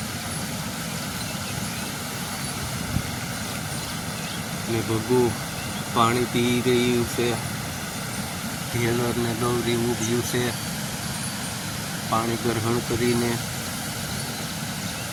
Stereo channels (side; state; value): both; identical; correlation 1.00